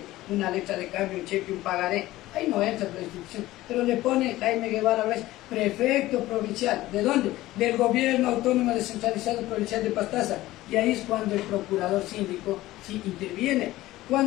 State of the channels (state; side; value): quieter; right; 16.7 dB